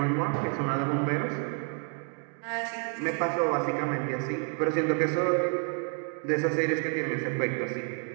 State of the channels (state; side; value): quieter; left; 39.2 dB